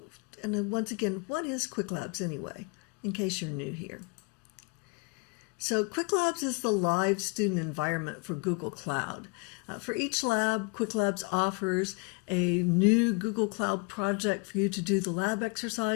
then once again, what is Qwiklabs anyway, in case you're new here? So Qwiklabs is the live student environment for Google Cloud. For each lab, Qwiklabs offers a new Google Cloud project for you to do the lab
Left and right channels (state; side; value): quieter; right; 31.8 dB